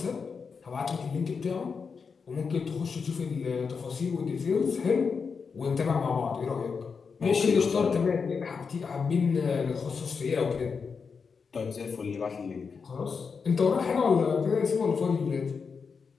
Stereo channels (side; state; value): right; quieter; 5.5 dB